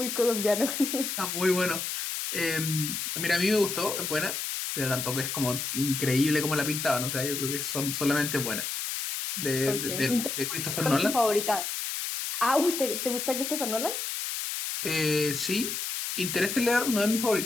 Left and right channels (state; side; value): noise; left; hiss, 3 dB below the sound